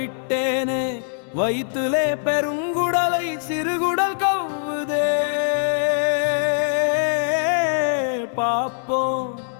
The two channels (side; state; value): right; silent; digital silence